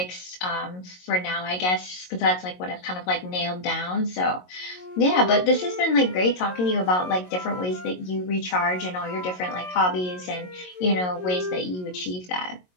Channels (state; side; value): late; right; 22 ms